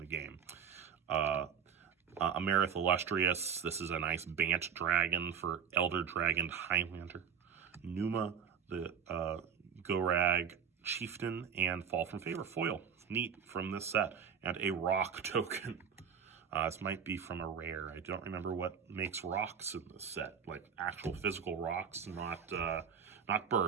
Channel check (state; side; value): quieter; left; 7.3 dB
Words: game. Amerith Illustrious, this is a nice Bant Dragon for Elder Dragon Highlander. Numa, the Gorag Chieftain, and Fall from Favor foil. Neat from this set. And a rock token. This might be from a rare. I don't remember what makes rocks in this set. Like actual physical rocks, not